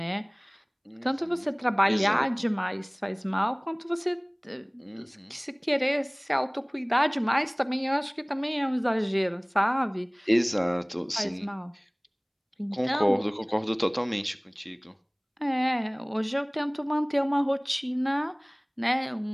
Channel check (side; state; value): both; identical; correlation 1.00